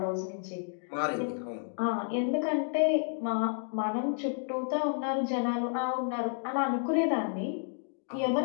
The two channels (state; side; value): silent; right; digital silence